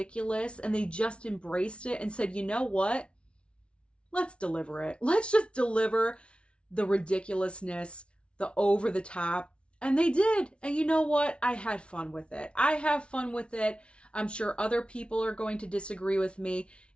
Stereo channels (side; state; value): right; late; 0.059 ms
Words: and they just embraced it and said, you know what? Let's deliver it. Let's just deliver the ridiculousness, the over the top. And they did. And you know what? I had fun with it. I have fun with it. I'm sure other people are going to disagree with me.